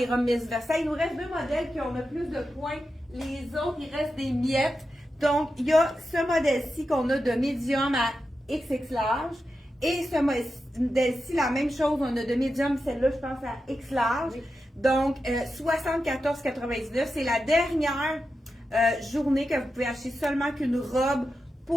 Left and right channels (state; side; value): normal; both; correlation 0.90